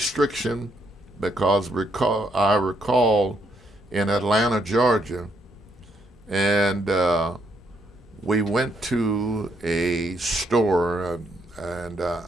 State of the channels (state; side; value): normal; both; correlation 0.74